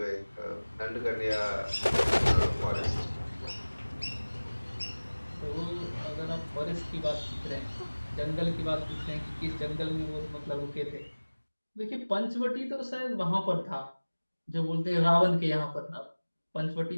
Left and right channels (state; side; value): inverted; both; correlation -1.00